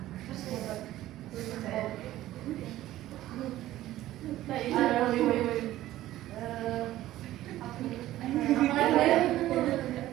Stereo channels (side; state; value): left; quieter; 14.7 dB